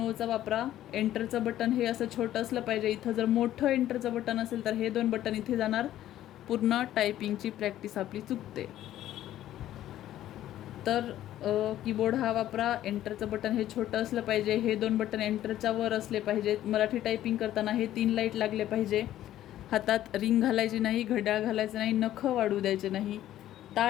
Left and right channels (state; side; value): quieter; right; 12.9 dB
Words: वापरा. एंटरचं बटन हे असं छोटं असलं पाहिजे. इथं जर मोठं एंटरचं बटन असेल तर हे 2 बटन इथे जाणार. पूर्ण टायपिंगची प्रॅक्टिस आपली चुकते. तर कीबोर्ड हा वापरा. एंटरचं बटन हे छोटं असलं पाहिजे. हे 2 बटन एंटरच्या वर असले पाहिजेत. मराठी टायपिंग करताना हे 3 लाईट लागले पाहिजे. हातात रिंग घालायची नाही, घड्याळ घालायचं नाही, नखं वाढू द्यायचे नाही.